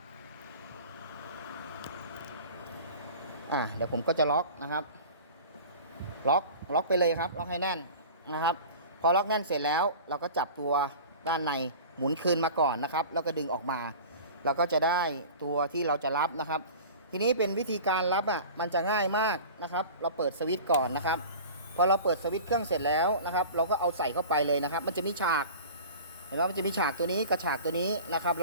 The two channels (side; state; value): both; inverted; correlation -0.38